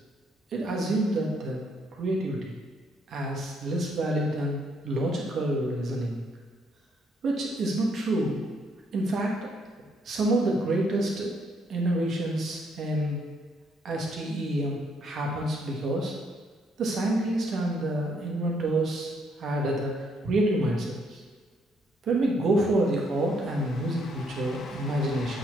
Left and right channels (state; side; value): normal; both; correlation 0.71